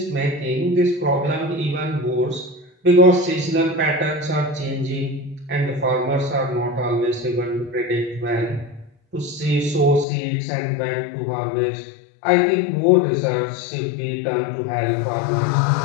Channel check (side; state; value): right; drops out; at 10.1 s